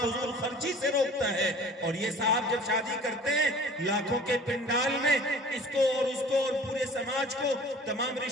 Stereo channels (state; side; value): normal; both; correlation 0.46